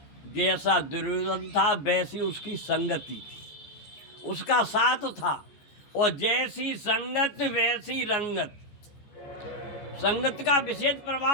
जैसा दुर्योधन था वैसी उसकी संगति थी, उसका साथ था, और जैसी संगत वैसी रंगत। संगत का विशेष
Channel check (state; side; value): late; right; 14 ms